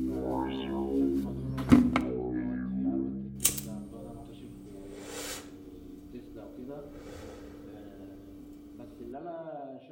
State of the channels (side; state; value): both; identical; correlation 1.00